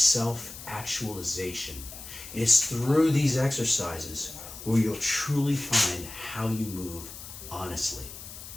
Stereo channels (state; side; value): noise; left; hiss, 13 dB below the sound